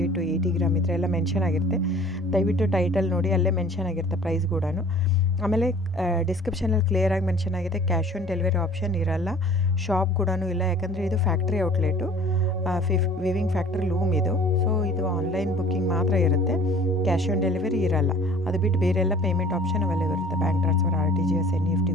to 80 ಗ್ರಾಮ್ ಇದ್ದರೆ ಎಲ್ಲ ಮೆನ್ಷನ್ ಆಗಿರುತ್ತೆ. ದಯವಿಟ್ಟು ಟೈಟಲ್ ನೋಡಿ, ಅಲ್ಲೇ ಮೆನ್ಷನ್ ಆಗಿರುತ್ತೆ ಪ್ರೈಸ್ ಕೂಡ. ಆಮೇಲೆ ಡಿಸ್ಕ್ರಿಪ್ಷನಲ್ಲಿ ಕ್ಲಿಯರಾಗಿ ಮೆನ್ಷನ್ ಆಗಿದೆ, ಕ್ಯಾಶ್ ಆನ್ ಡೆಲಿವರಿ ಆಪ್ಷನ್ ಇರಲ್ಲ, ಶಾಪ್ ಕೂಡ ಇಲ್ಲ. ಯಾಕಂದರೆ ಇದು factory outlet, viewing factory loom ಇದು. ಸೊ ಇದು ಆನ್ಲೈನ್ ಬುಕ್ಕಿಂಗ್ ಮಾತ್ರ ಇರುತ್ತೆ, ಕ್ಯಾಶ್ ಆನ್ ಡೆಲಿವರಿ ಇರಲ್ಲ. ಅದು ಬಿಟ್ಟು ಬೇರೆ ಎಲ್ಲ ಪೇಮೆಂಟ್ ಆಪ್ಷನ್ ಅವೈಲೇಬಲ್ ಇರುತ್ತೆ, bank transfer, RTGS, NEFT,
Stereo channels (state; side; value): normal; both; correlation 0.48